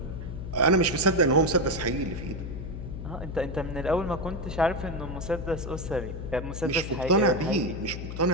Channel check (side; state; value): left; noise; hum, 7 dB below the sound